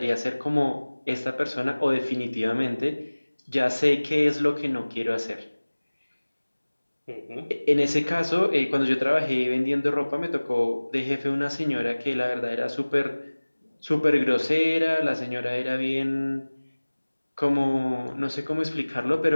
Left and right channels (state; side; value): inverted; both; correlation -1.00